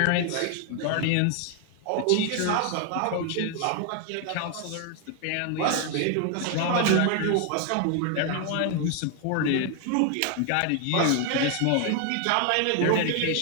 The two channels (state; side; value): different; both; correlation 0.00